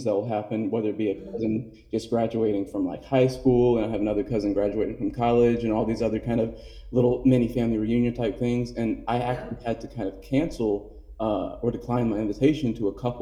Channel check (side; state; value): both; identical; correlation 1.00